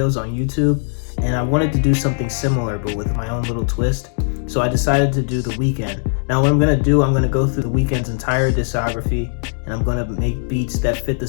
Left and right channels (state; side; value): silent; right; 66 dB below the other